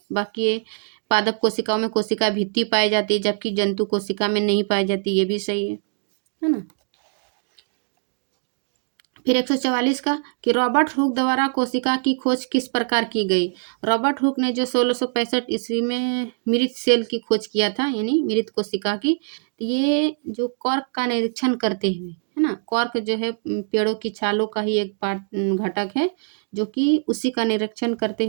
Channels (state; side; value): silent; left; digital silence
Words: बाकी ये पादप कोशिकाओं में कोशिका भित्ति पाई जाती है जबकि जंतु कोशिका में नहीं पाई जाती, ये भी सही है ना। फिर 144 का कि रॉबर्ट हुक द्वारा कोशिका की खोज किस प्रकार की गई। रॉबर्ट हुक ने जो 1665 ईस्वी में मृत सेल की खोज किया था, यानी मृत कोशिका की, तो ये जो कॉर्क का निरीक्षण करते हुए, है ना, कॉर्क जो है पेड़ों की छालों का ही एक घटक है, जो कि उसी का निरीक्षण करते